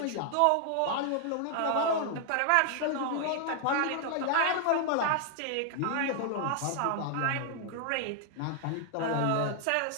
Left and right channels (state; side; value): different; both; correlation 0.00